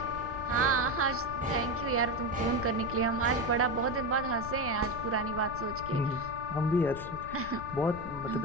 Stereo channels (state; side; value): noise; left; rumble, 12 dB below the sound